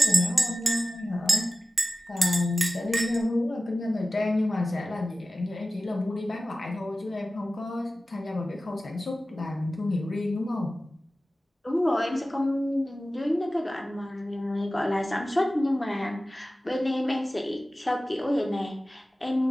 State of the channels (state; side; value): normal; both; correlation 0.95